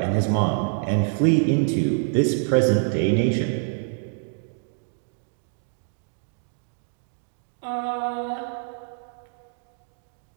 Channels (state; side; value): silent; left; digital silence